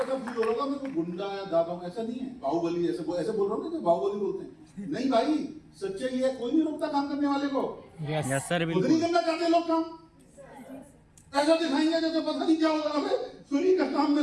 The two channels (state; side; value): identical; both; correlation 1.00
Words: ऐसा फील हो रहा होगा मैं कोई गुंडा या दादा हूं, ऐसा नहीं है। बाहुबली ऐसे बोल रहा हूँ ना, बाहुबली बोलते हैं, नहीं भाई। सच्चाई है, कोई नहीं रोकता काम करने वाले को। यस सर खुद नहीं करना चाहते लोग काम, ऐसा दिखाएंगे जैसे पता नहीं क्या होगा, हमें फ्री का काम